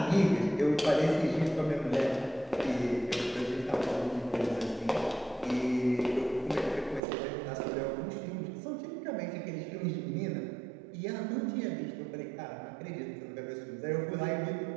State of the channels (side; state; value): left; drops out; at 7.0 s